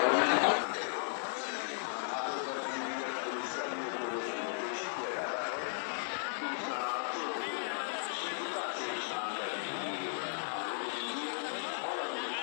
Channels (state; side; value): silent; right; digital silence